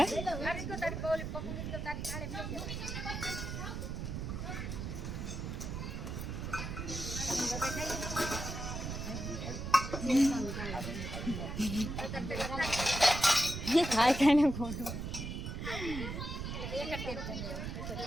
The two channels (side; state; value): right; noise; rumble, 5 dB below the sound